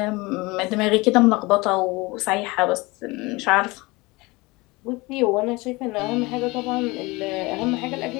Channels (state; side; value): quieter; right; 23.4 dB